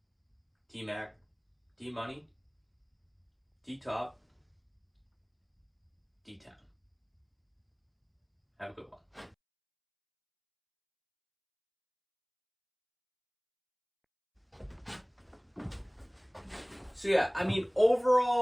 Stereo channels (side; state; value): both; identical; correlation 1.00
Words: D-Mac, D-Money, D-Top, D-Town. Have a good one. So yeah,